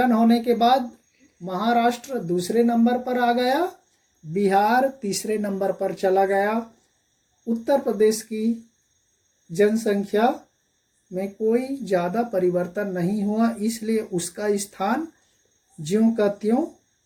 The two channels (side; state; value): both; identical; correlation 1.00